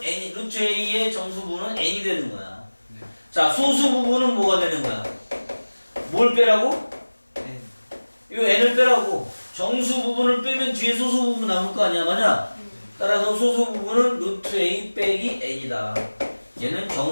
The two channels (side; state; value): both; inverted; correlation -1.00